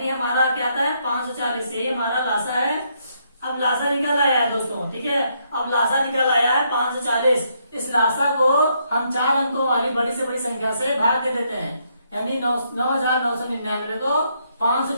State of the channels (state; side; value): inverted; both; correlation -0.74